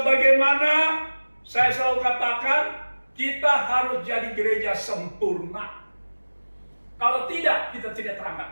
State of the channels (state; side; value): inverted; both; correlation -1.00